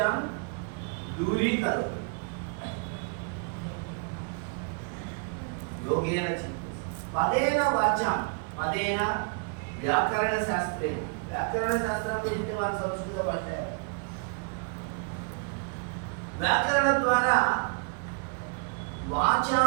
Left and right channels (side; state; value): left; quieter; 36.3 dB